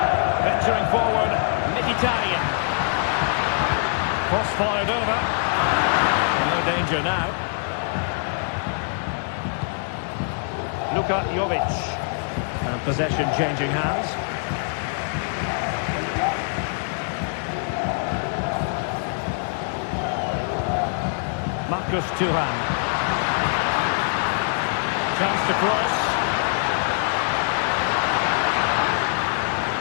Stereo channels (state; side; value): silent; right; digital silence